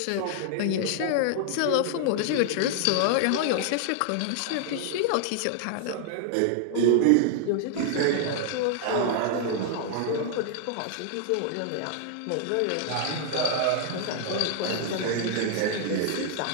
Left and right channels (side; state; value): both; different; correlation 0.00